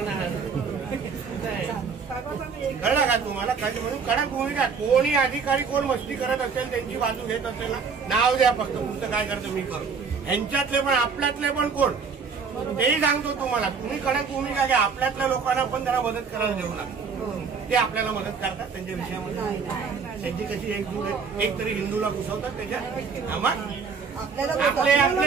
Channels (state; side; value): quieter; left; 5.5 dB